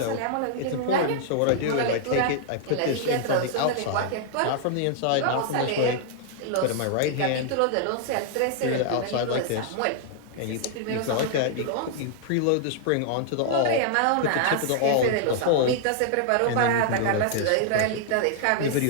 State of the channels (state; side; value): different; both; correlation -0.01